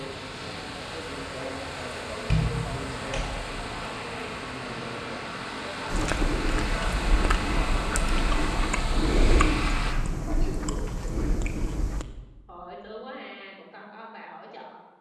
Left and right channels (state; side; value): identical; both; correlation 1.00